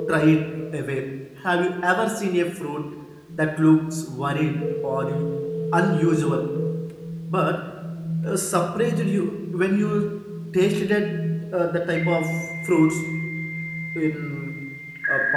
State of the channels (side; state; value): both; identical; correlation 1.00